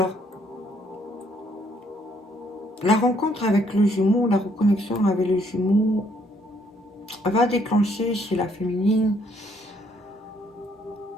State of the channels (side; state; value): both; normal; correlation 0.68